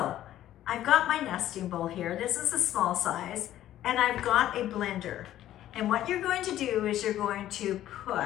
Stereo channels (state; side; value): quieter; right; 12.8 dB